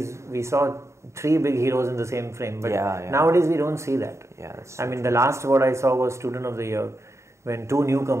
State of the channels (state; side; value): late; left; 0.14 ms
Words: we saw 3 big heroes in the same frame, but nowadays we don't see that. Yeah, that's. I mean, the last what I saw was Student of the Year, when 2